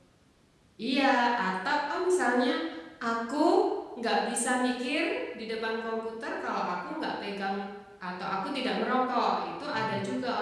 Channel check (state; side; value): identical; both; correlation 1.00